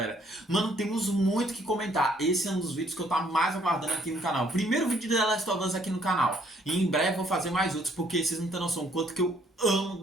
Mano, temos muito que comentar. Esse é um dos vídeos que eu tô mais aguardando aqui no canal. Primeiro vídeo de The Last of Us aqui no canal. E em breve vou fazer mais outros, porque vocês não têm noção o quanto que eu amo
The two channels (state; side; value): normal; both; correlation 0.65